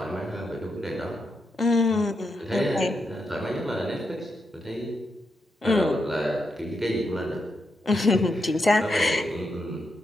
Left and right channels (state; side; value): normal; both; correlation 0.83